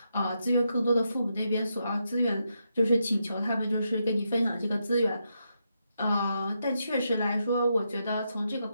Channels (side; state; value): both; inverted; correlation -0.82